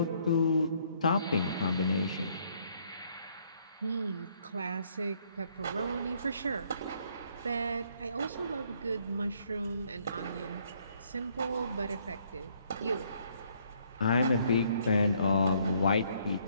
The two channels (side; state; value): both; inverted; correlation -0.67